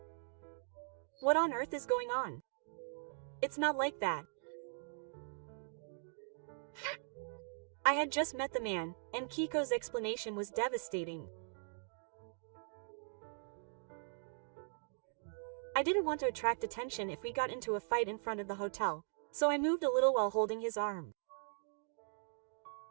What on earth is going on? It's not like that. I had just met the man, and Keiko's explanation was devastating. I didn't want to attract attention if we got into a fight in front of the hotel, so I moved a little while holding his arm.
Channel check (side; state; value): left; silent; digital silence